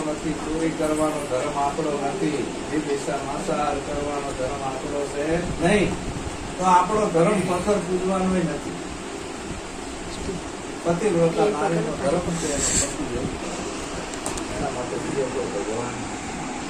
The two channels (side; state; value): both; identical; correlation 1.00